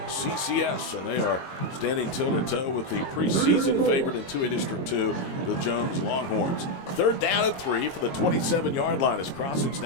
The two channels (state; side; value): late; right; 22 ms